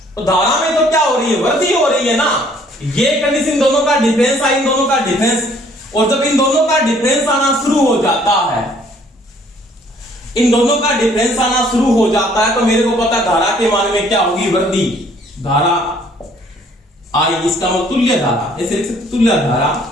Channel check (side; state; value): both; normal; correlation 0.60